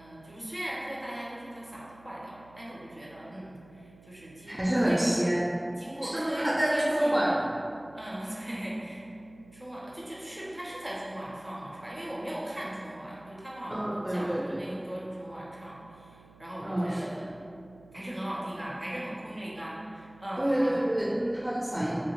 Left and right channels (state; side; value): noise; right; hum, 23 dB below the sound